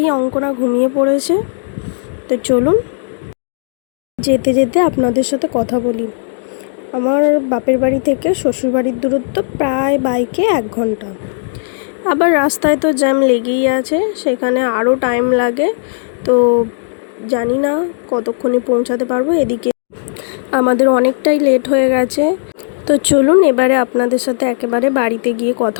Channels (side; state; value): right; silent; digital silence